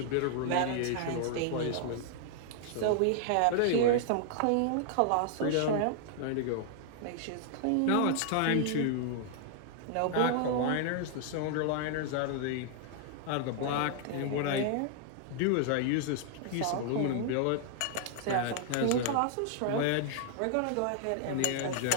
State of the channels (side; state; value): both; different; correlation -0.01